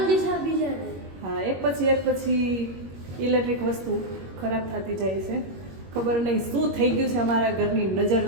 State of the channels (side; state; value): left; late; 21 ms